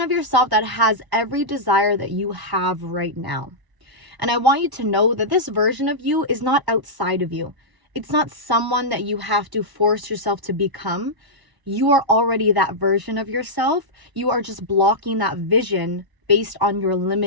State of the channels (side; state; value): left; late; 1.0 ms